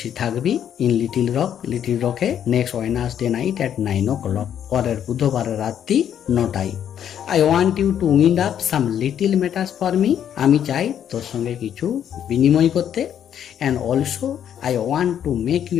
থাকবি, ইন লিটিল রকে next Wednesday night at 9 o'clock, পরের বুধবারের রাত্রি 9টায়। I want you to wind up some little matters for me, আমি চাই তোর সঙ্গে কিছু বিনিময় করতে। And also I want to make you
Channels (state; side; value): quieter; right; 9.5 dB